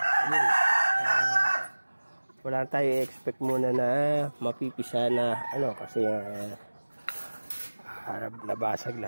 Wala tayo expect muna na mapipisa na kasi nabasag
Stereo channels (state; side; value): inverted; both; correlation -1.00